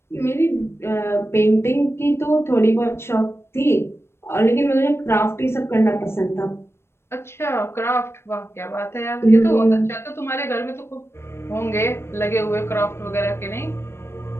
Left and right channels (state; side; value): late; right; 0.12 ms